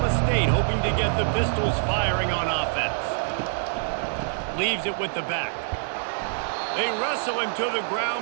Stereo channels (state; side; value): silent; left; digital silence